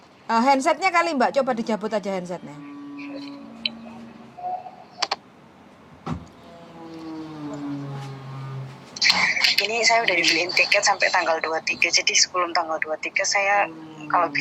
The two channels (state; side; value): identical; both; correlation 1.00